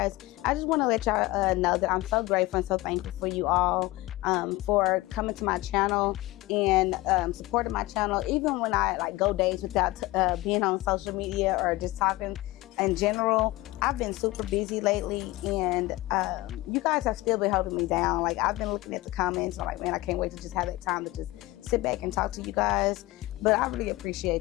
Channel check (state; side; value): quieter; right; 19.5 dB